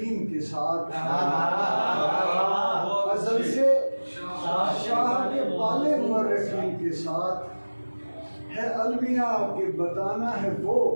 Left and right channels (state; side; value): inverted; both; correlation -1.00